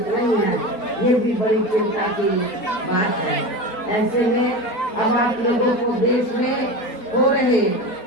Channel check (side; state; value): right; late; 4.7 ms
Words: नहीं है। ये भी बड़ी चिंता की बात है। ऐसे में अब आप लोगों को देश में हो रहे